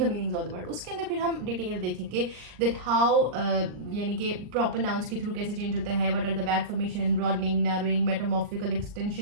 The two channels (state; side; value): late; left; 39 ms